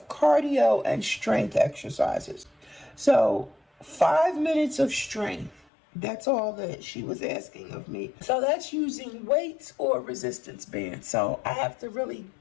cardio and strength exercises. So 5 minutes of strength, that's all that she was asking of me. So that's using weights or resistance bands. So I have to really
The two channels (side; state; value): right; drops out; at 5.7 s